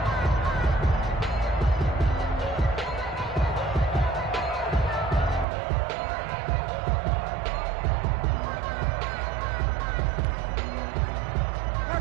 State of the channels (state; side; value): drops out; left; at 5.5 s